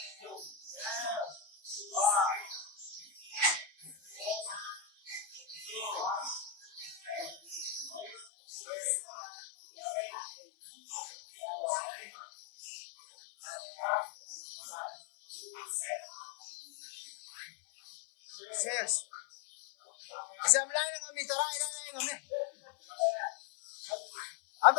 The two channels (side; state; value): right; drops out; at 8.2 s